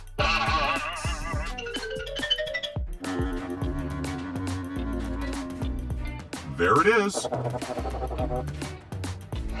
There it is.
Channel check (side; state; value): both; identical; correlation 1.00